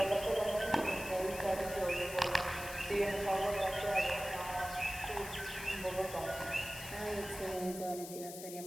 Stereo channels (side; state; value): left; noise; hiss, 11 dB below the sound